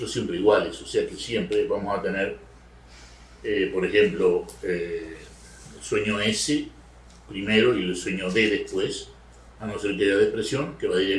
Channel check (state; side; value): identical; both; correlation 1.00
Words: siempre iguales. O sea que siempre vamos a tener, por ejemplo, el sueño S primero y el sueño D después, a no ser que haya depresión, que va